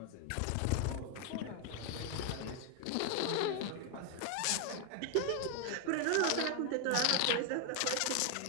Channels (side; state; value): both; different; correlation 0.01